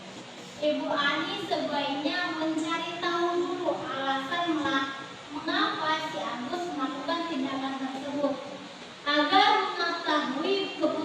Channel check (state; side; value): identical; both; correlation 1.00